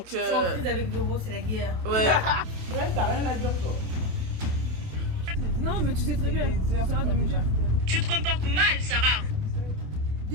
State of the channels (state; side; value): late; left; 28 ms